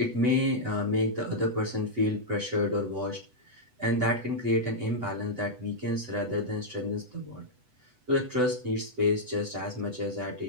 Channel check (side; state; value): left; late; 8.0 ms